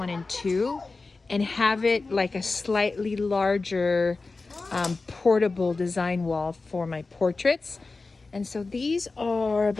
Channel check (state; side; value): quieter; right; 3.8 dB